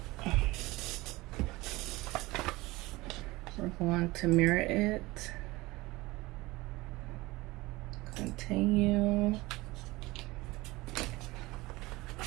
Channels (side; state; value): left; quieter; 20.8 dB